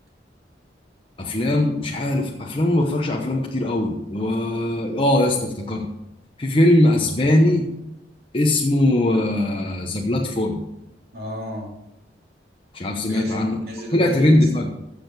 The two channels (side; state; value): both; normal; correlation 0.75